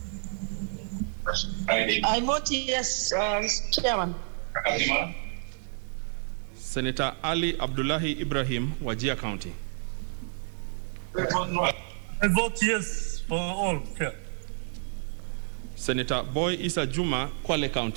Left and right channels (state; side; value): silent; left; 58 dB below the other